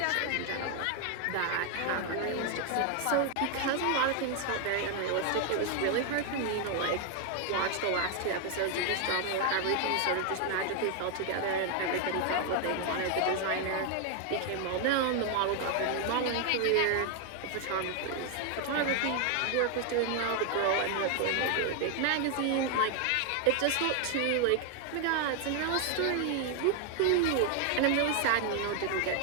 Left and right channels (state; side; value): different; both; correlation 0.00